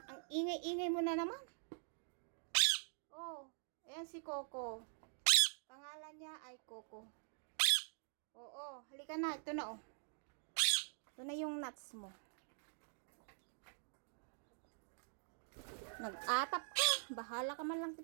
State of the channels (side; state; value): left; silent; digital silence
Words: Ang ingay-ingay mo na naman. Oh. Ayan si Coco. Pangalan niya ay Coco. Oo. Halika na. Ito na oh. Ito na yung nuts mo. Nag-atap ka. Bahala ka man lang